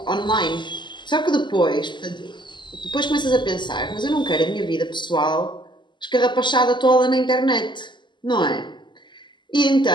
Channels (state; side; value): late; right; 0.22 ms